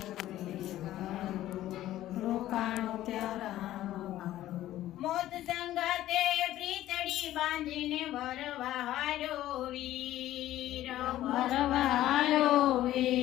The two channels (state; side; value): quieter; right; 14.0 dB